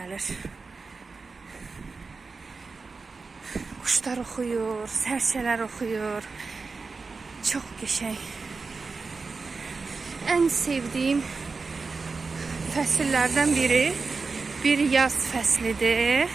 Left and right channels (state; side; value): quieter; left; 4.3 dB